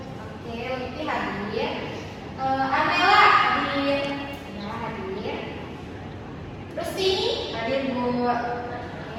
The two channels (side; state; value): both; identical; correlation 1.00